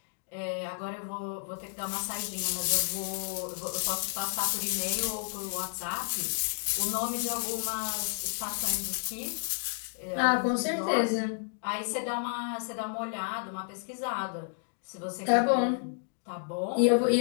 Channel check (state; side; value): silent; right; digital silence